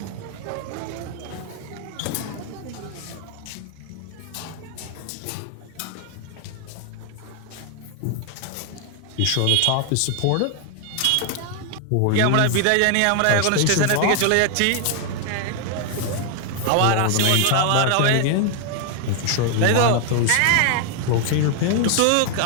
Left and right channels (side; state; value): both; different; correlation 0.00